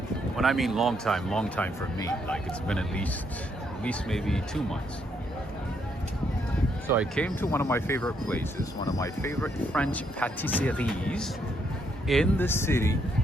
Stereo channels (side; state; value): both; normal; correlation 0.74